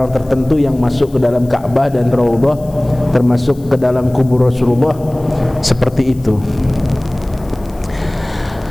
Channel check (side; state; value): left; noise; hiss, 26 dB below the sound